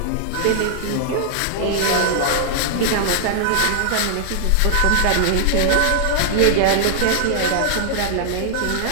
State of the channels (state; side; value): different; both; correlation -0.01